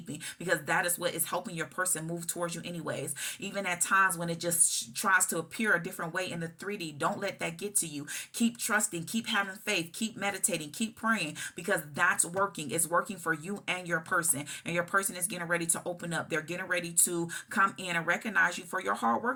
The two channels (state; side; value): identical; both; correlation 1.00